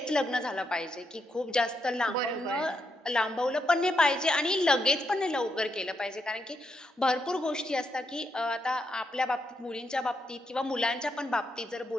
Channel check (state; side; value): normal; both; correlation 0.80